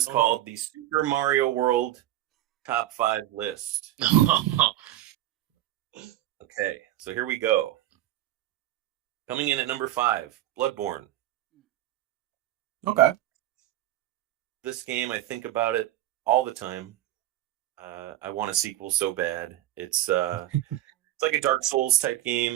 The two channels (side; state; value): left; quieter; 13.9 dB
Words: called the Super Mario World Top 5 list. Okay, so here we go. Coming in at number 5, Bloodborne. Okay. This game, I think about it all the time. I want a sequel so bad. It's like a Dark Souls type